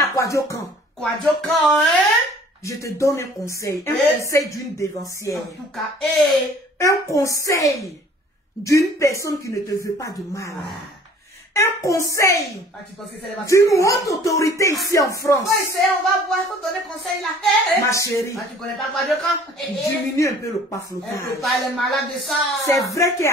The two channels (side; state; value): both; normal; correlation 0.52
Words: quoi dire quand? Je te donne un conseil. Un conseil d'une dévancière. En tout cas, un conseil d'une personne qui ne te veut pas de mal. Un conseil d'une haute autorité ici en France. On va voir, faut donner conseil là. Ma chérie, tu connais pas quoi de quand? diminue un peu le paflotage. On peut pas les malades de ça. C'est vrai